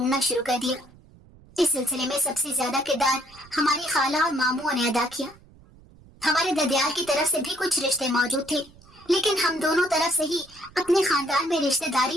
शुरू कर दिया। इस सिलसिले में सबसे ज्यादा किरदार हमारी खाला और मामू ने अदा किया। हमारे ददियाल की तरफ से भी कुछ रिश्ते मौजूद थे, लेकिन हम दोनों तरफ से ही अपने खानदान में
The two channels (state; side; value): noise; right; rumble, 25 dB below the sound